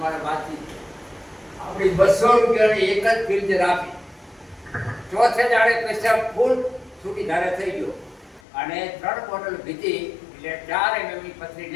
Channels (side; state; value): right; drops out; at 8.4 s